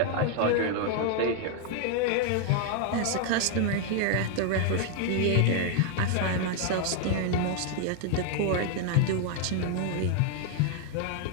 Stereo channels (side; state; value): both; different; correlation 0.00